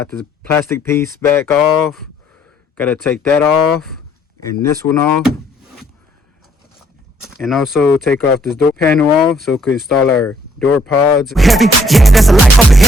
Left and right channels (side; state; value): both; normal; correlation 0.66